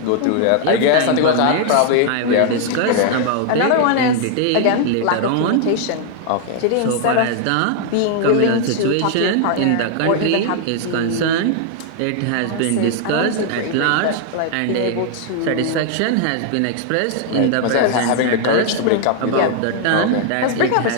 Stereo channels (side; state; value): both; different; correlation 0.00